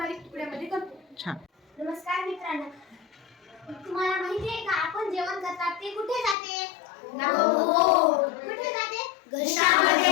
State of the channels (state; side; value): drops out; right; at 6.4 s